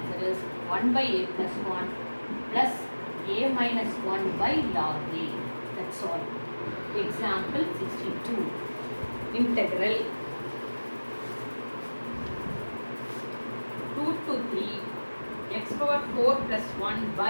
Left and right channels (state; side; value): inverted; both; correlation -1.00